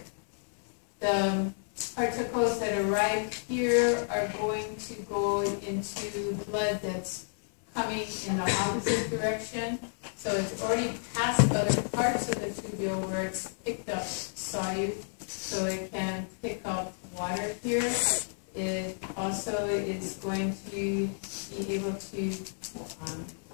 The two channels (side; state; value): right; silent; 57 dB below the other